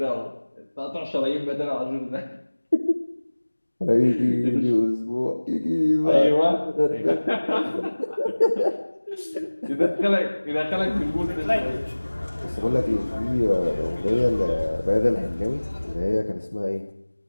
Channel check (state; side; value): inverted; both; correlation -1.00